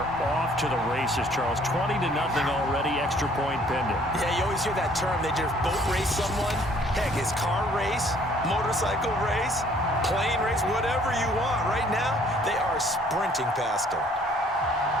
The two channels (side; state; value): both; normal; correlation 0.59